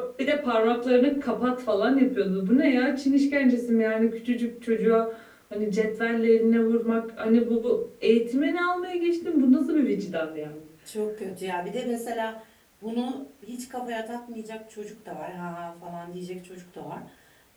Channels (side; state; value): both; identical; correlation 1.00